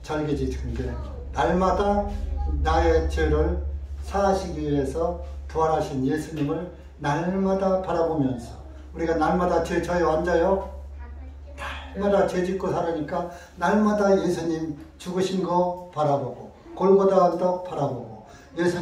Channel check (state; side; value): identical; both; correlation 1.00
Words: 절기 지키는데 날마다 나의 죄를 사하시기 위해서 부활하신 예수님을 날마다 바라보면서 우리가 날마다 죄 져요 안 져요? 날마다 죄 짓고 살으니까 날마다 예수님 죽으신 거 바라보고 골고다 언덕 바라보고